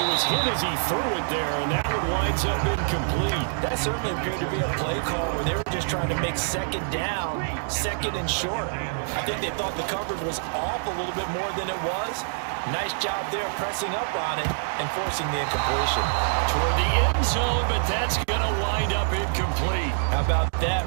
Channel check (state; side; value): silent; left; digital silence